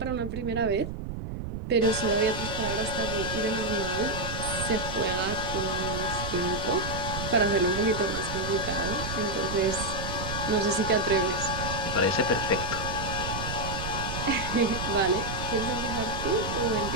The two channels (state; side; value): noise; right; rumble, 6 dB below the sound